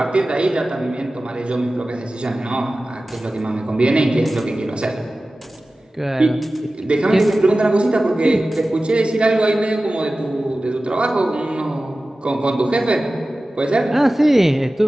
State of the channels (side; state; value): both; normal; correlation 0.96